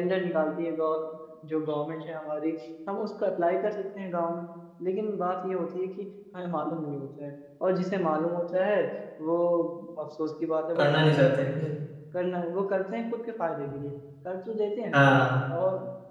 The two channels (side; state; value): both; identical; correlation 1.00